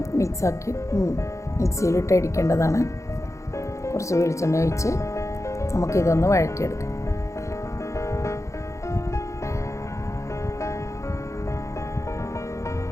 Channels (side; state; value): right; late; 0.15 ms